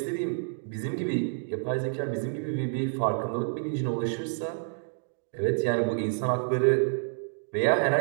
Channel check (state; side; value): silent; left; digital silence